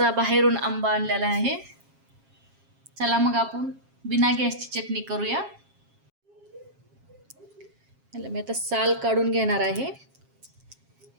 बाहेरून आंबा आणलेला आहे. चला मग आपण बिना गॅसची चटणी करूया. याला मी आता साल काढून घेणार आहे.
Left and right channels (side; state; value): left; late; 7.4 ms